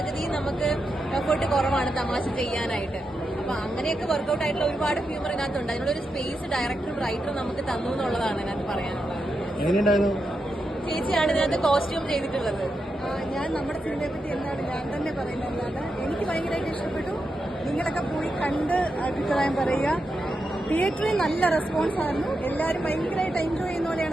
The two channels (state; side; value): normal; both; correlation 0.86